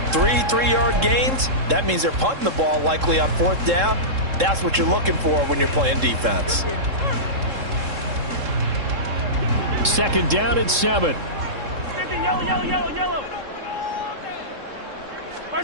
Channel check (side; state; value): left; late; 3.7 ms